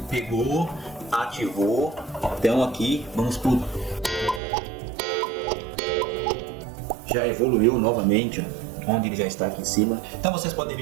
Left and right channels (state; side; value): drops out; left; at 4.4 s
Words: pegou, ativou. Então aqui, vamos por... Já evoluiu novamente, ó, onde ele já está aqui em cima. Então vocês podem